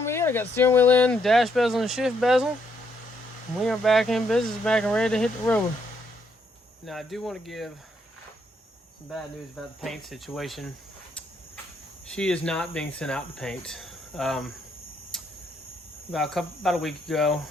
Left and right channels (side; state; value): both; normal; correlation 0.73